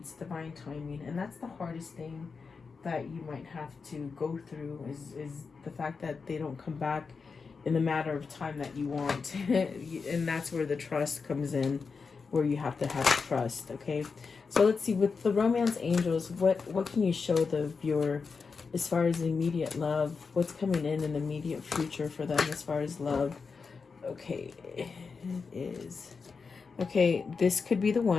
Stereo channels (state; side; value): quieter; right; 5.0 dB